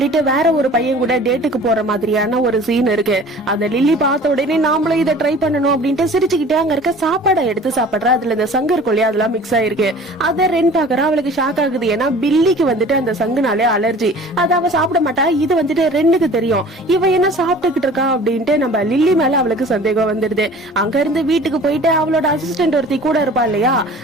வேற ஒரு பையன் கூட டேட்டுக்கு போற மாதிரியான ஒரு சீன் இருக்கு. அத லில்லி பார்த்த உடனே நாமளும் இதை ட்ரை பண்ணணும் அப்படின்ட்டு சிரிச்சுக்கிட்டே அங்க இருக்க சாப்பாடை எடுத்து சாப்பிடுறா. அதுல இந்த சங்கு இருக்கும் இல்லையா, அதெல்லாம் மிக்ஸ் ஆயிருக்கு. அத ரென் பாக்குறா. அவளுக்கு ஷாக் ஆகுது. ஏன்னா பில்லிக்கு வந்துட்டு அந்த சங்குனாலே அலர்ஜி. அத அவ சாப்பிட மாட்டா. இது வந்துட்டு ரெண்டுக்கு தெரியும். இவ என்ன சாப்பிட்டுக்கிட்டு இருக்கா அப்படின்ட்டு நம்ம லில்லி மேல அவளுக்கு சந்தேகம் வந்துடுது. அங்க இருந்து வீட்டுக்கு போயிட்டு அவளோட அசிஸ்டன்ட் ஒருத்தி கூட இருப்பா இல்லையா,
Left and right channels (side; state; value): both; normal; correlation 0.45